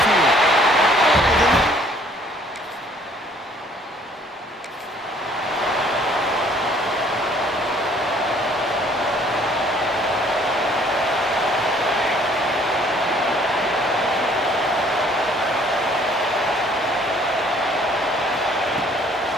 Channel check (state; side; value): normal; both; correlation 0.59